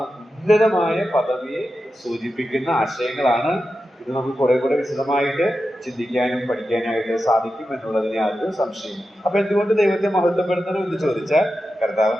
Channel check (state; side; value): normal; both; correlation 0.91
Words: ഉന്നതമായ പദവിയെ സൂചിപ്പിക്കുന്ന ആശയങ്ങളാണ്. ഇത് നമുക്ക് കുറെ കൂടെ വിശദമായിട്ട് ചിന്തിക്കാനും പഠിക്കാനായിട്ട് സാധിക്കും എന്നുള്ളതിന് യാതൊരു സംശയം. അപ്പൊ എന്തുകൊണ്ട് ദൈവത്തെ മഹത്വപ്പെടുത്തണം എന്ന് ചോദിച്ചാൽ കർത്താവ്